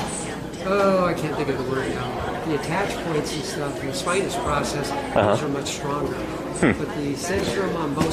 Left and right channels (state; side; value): identical; both; correlation 1.00